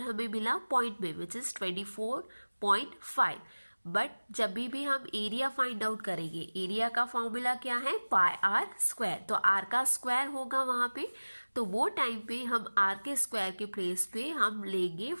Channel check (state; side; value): inverted; both; correlation -1.00